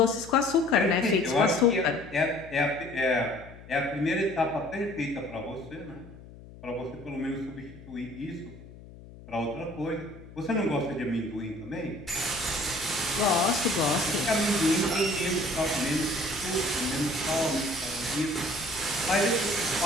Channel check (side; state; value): left; noise; hum, 18 dB below the sound